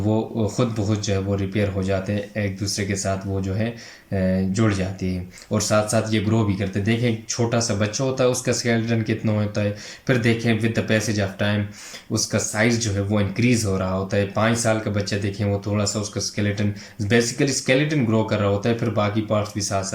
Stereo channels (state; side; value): identical; both; correlation 1.00